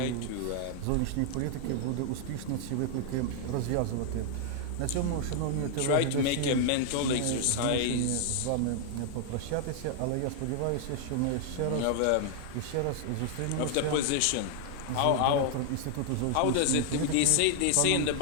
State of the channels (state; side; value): different; both; correlation 0.00